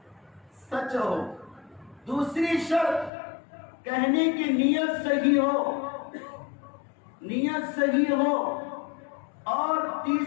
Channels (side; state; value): right; drops out; at 3.1 s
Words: سچ ہو. دوسری شرط کہنے کی نیت صحیح ہو، نیت صحیح ہو. اور